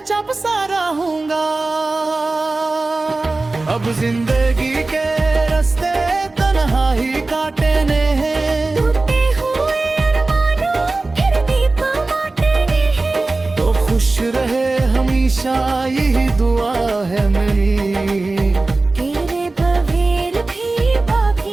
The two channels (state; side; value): quieter; left; 3.3 dB